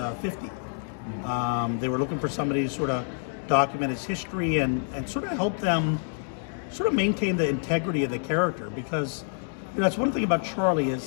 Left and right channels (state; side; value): silent; right; digital silence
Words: 50. They were looking for somebody to sort of document his history and sort of help them sort of maintain the integrity of the character, because that's one thing about Charlie is